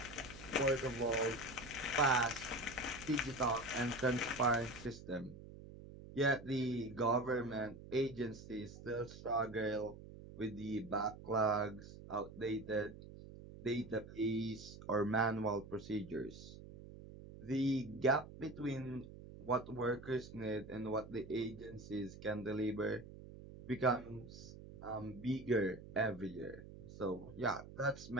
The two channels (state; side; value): noise; right; hum, 15 dB below the sound